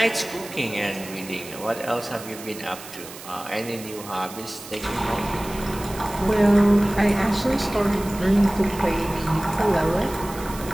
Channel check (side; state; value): right; noise; hiss, 15 dB below the sound